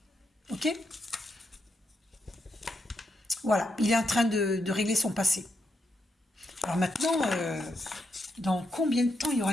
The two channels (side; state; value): both; normal; correlation 0.82